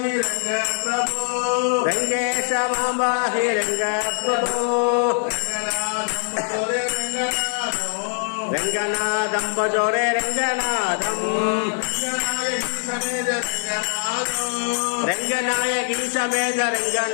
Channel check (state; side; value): silent; right; 64 dB below the other